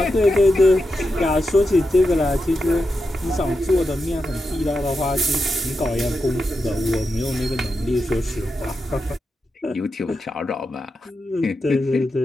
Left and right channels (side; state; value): both; normal; correlation 0.88